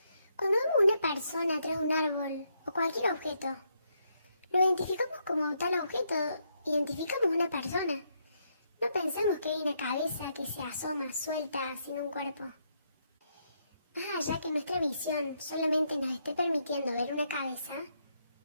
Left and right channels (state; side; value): inverted; both; correlation -0.76